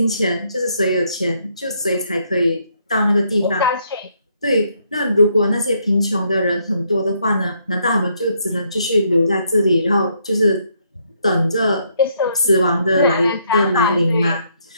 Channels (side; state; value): both; inverted; correlation -0.72